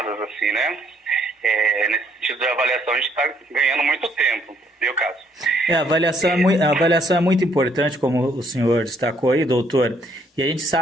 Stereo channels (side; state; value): both; normal; correlation 0.68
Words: assim, né? Nesse sentido de avaliação, a gente está ganhando muito tempo, viu, caso? A avaliação é muito importante, como o senhor destacou aí, doutor. E a gente